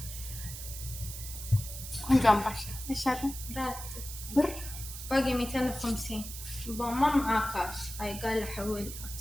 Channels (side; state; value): right; noise; hiss, 9 dB below the sound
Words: عم باشا ايش هذا؟ راتب بر باقي 250. ما معاه كاش. هاي قال حولها.